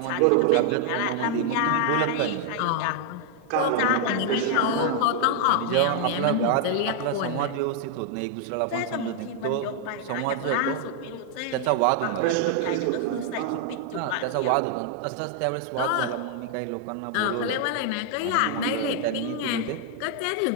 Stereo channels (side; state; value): both; different; correlation 0.00